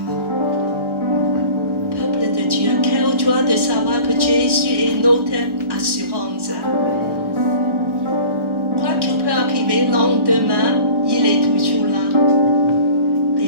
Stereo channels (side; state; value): left; late; 1.4 ms